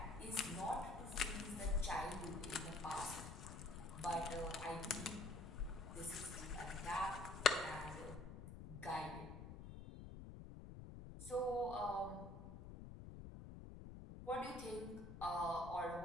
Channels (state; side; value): noise; left; rumble, 10 dB below the sound